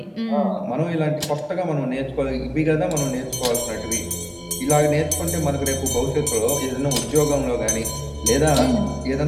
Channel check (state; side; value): identical; both; correlation 1.00